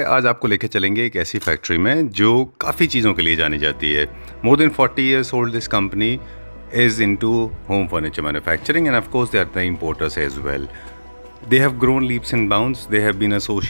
आज आपको लेके चलेंगे एक ऐसी फैक्ट्री में जो काफ़ी चीज़ों के लिए जानी जाती है। More than 40 years old this company is into home furniture manufacturing and of course they are the importers as well. They have grown leaps and bounds. They have been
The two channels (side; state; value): both; inverted; correlation -1.00